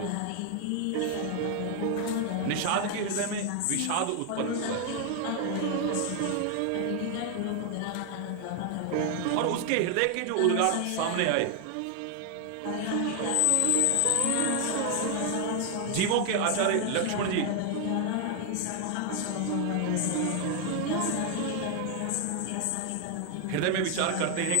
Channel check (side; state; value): both; different; correlation 0.00